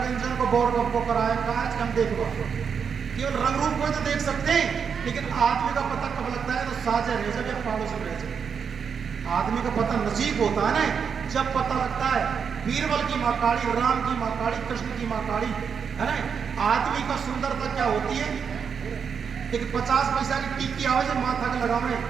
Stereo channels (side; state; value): left; quieter; 6.6 dB